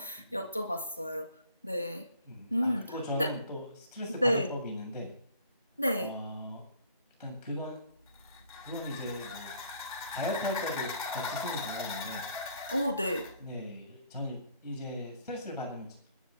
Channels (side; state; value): both; inverted; correlation -0.61